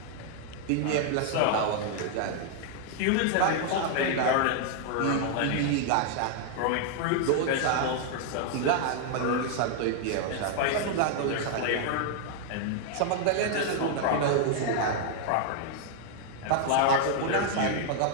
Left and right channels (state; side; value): different; both; correlation 0.00